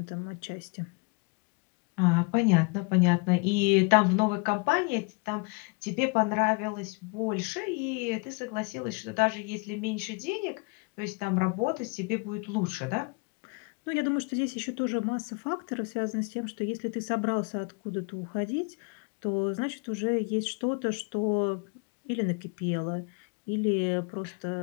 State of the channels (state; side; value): quieter; right; 30.5 dB